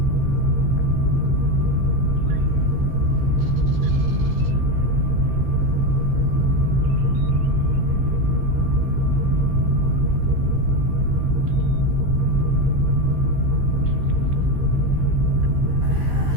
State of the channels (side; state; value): left; late; 15 ms